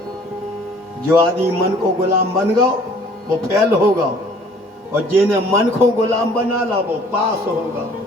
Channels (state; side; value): normal; both; correlation 0.54